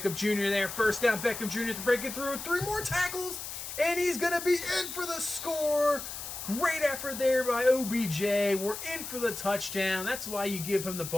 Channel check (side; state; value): left; noise; hiss, 8 dB below the sound